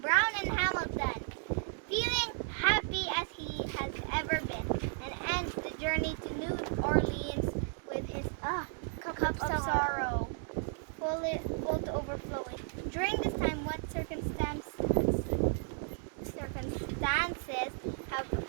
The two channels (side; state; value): left; silent; 55 dB below the other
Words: Brown and Hamilton, feeling happy as he has ever been, and ends the journey to New Orleans with his cup of sorrow, full to overflowing. During this time, what circumstances